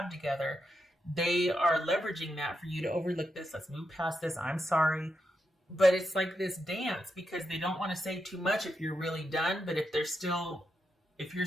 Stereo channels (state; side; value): normal; both; correlation 0.84